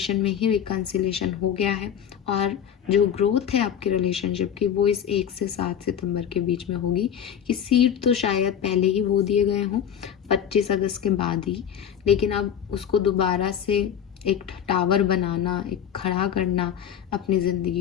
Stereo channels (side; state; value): right; quieter; 8.9 dB